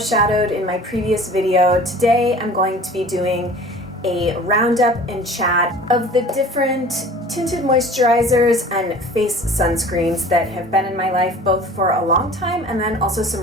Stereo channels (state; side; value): normal; both; correlation 0.44